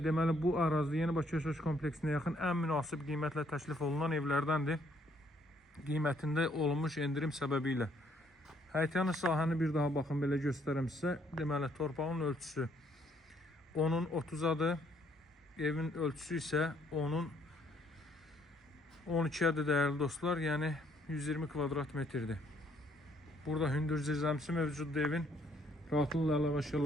bu ərazidə Yeni Bakı yaşayış kompleksinə yaxın ən münasib qiymətlə təklif olunan evlərdəndir. Qiymətində olmuş endirim səbəbilə. Həyətyanı sahəni bir daha baxın, belə göstərəm sizə. Deməli torpağın ölçüsü onun 30-adır. Evin ölçüsü isə onun 12-ədir değerli dostlar. Yəni 120 kvadrat metrdir. Burada hündür zirzəmisi mövcuddur evin. Rahatlıqla əlavə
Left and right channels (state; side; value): normal; both; correlation 0.67